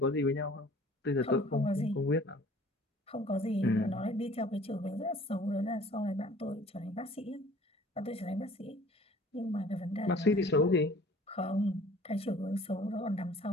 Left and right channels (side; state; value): both; normal; correlation 0.51